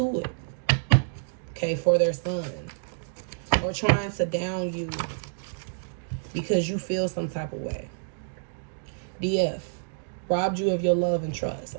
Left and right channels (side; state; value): left; silent; digital silence